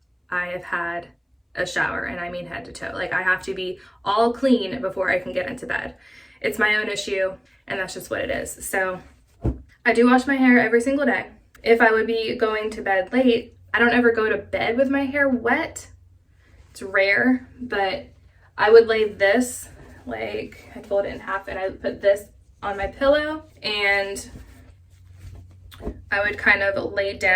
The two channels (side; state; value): both; identical; correlation 1.00